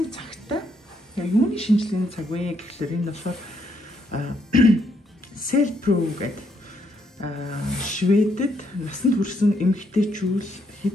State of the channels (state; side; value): normal; both; correlation 0.74